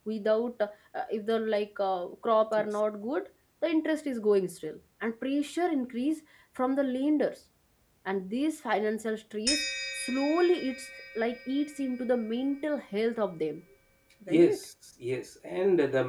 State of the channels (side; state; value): both; identical; correlation 1.00